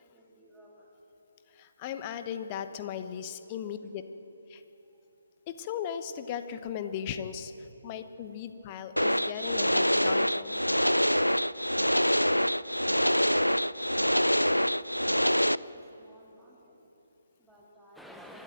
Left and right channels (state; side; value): inverted; both; correlation -0.95